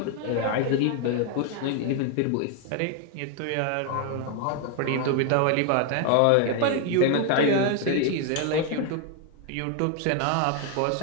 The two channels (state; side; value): different; both; correlation 0.01